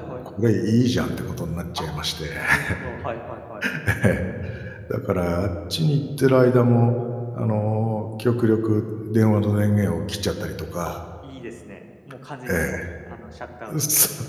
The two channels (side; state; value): both; identical; correlation 1.00